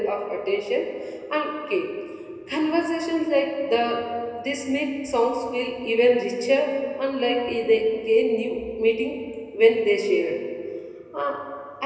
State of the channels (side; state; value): both; identical; correlation 1.00